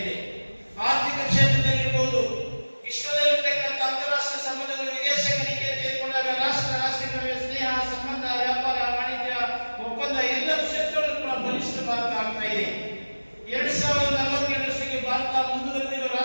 ಇದೆ. ಆರ್ಥಿಕ ಕ್ಷೇತ್ರದಲ್ಲಿ ಇರ್ಬೋದು, ವಿಶ್ವದಲ್ಲಿರ್ತಕ್ಕಂಥ ಅಂತಾರಾಷ್ಟ್ರೀಯ ಸಂಬಂಧಗಳು, ವಿದೇಶಗಳಿಗೆ ತೆಗೆದುಕೊಂಡಾಗ ರಾಷ್ಟ್ರ ನಡುವೆ ಸ್ನೇಹ, ಸಂಬಂಧ, ವ್ಯಾಪಾರ, ವಾಣಿಜ್ಯ ಒಪ್ಪಂದ ಎಲ್ಲ ಕ್ಷೇತ್ರಗಳಲ್ಲೂ ಕೂಡ ಬಲಿಷ್ಠ ಭಾರತ ಆಗ್ತಾ ಇದೆ. 2047 ಭಾರತ ಮುಂದುವರೆದಿರುವ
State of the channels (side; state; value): both; inverted; correlation -1.00